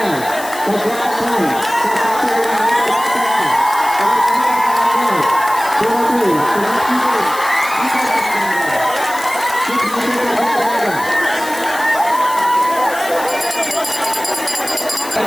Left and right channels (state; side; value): noise; left; hiss, 13 dB below the sound